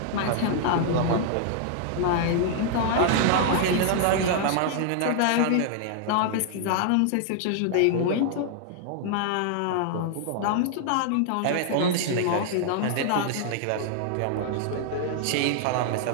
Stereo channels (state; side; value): different; both; correlation 0.00